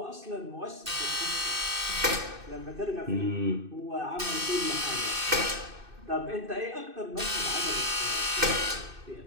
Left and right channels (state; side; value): late; left; 2.6 ms